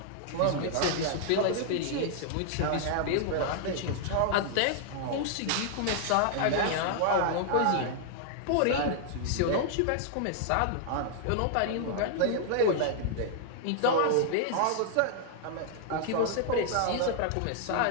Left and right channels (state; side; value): different; both; correlation -0.01